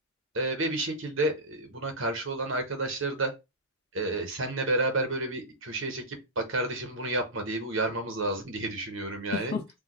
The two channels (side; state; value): both; normal; correlation -0.12